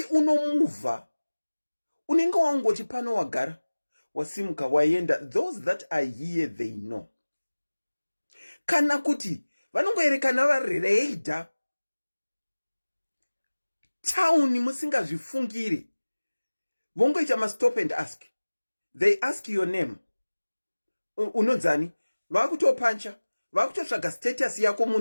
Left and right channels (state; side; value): inverted; both; correlation -1.00